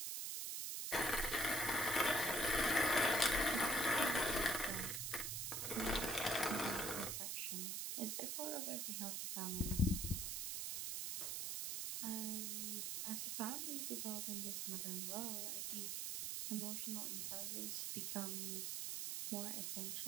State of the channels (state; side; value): noise; right; hiss, 2 dB below the sound